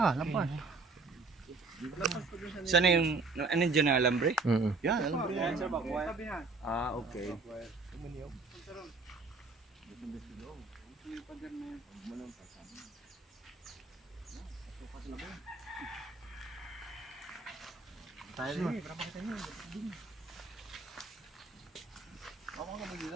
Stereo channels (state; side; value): quieter; left; 3.9 dB